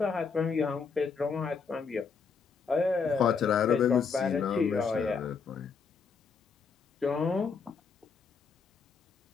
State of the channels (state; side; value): quieter; right; 5.5 dB